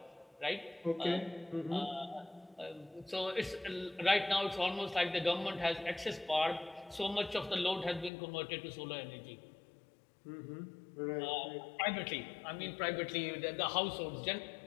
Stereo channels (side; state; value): right; drops out; at 8.1 s